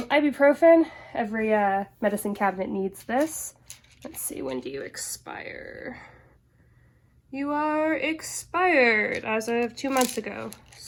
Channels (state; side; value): identical; both; correlation 1.00